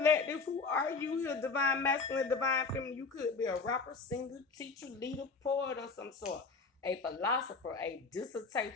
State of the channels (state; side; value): quieter; right; 4.4 dB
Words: who are you here? Divine masculine, divine feminine. You could be a rapper, singer, teacher, leader, poet, or some sort. A philosopher, a